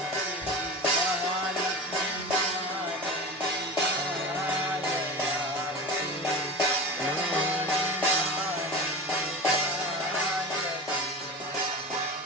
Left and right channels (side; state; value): both; normal; correlation 0.30